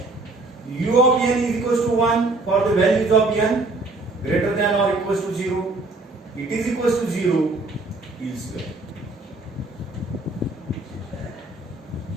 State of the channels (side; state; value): left; quieter; 3.2 dB